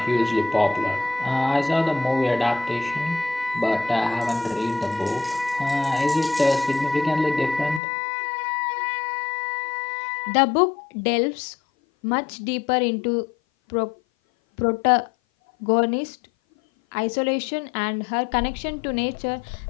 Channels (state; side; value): drops out; right; at 7.8 s